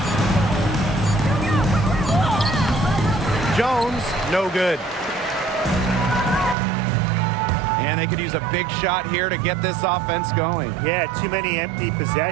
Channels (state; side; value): drops out; left; at 6.6 s